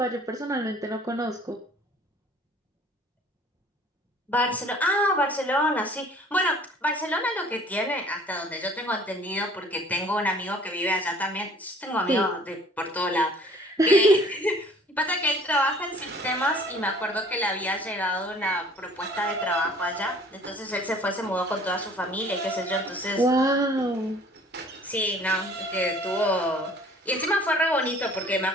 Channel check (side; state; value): both; normal; correlation 0.52